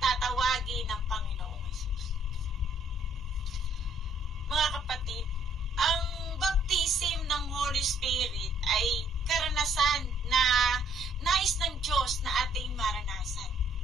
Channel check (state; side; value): normal; both; correlation 0.66